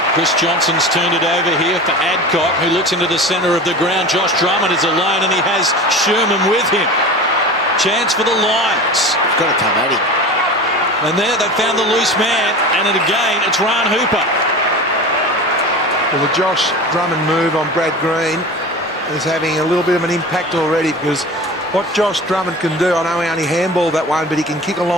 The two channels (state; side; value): normal; both; correlation 0.34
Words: Chris Johnson's turned it over here for Adcock, who looks into the centre of the ground. Josh Drummond is alone, and he has Sherman with him. Chance for the Lions. It's got to come at him. And there they found the loose man, and again it's Ryan Hooper. Well, the Josh Drummond move on Brad Green is having a little bit of an impact already, because what Josh Drummond can do, I know he only handballed that one, but he can kick a